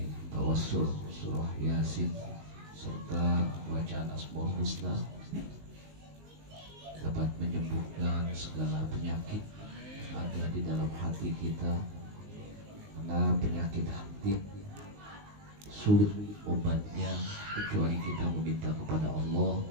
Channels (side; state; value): left; late; 19 ms